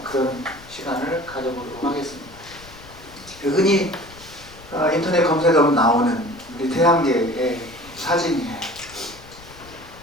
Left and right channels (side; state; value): left; noise; rumble, 20 dB below the sound